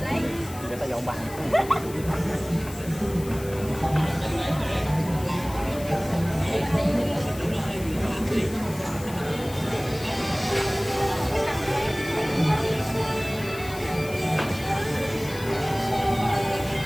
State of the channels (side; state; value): left; noise; hiss, 16 dB below the sound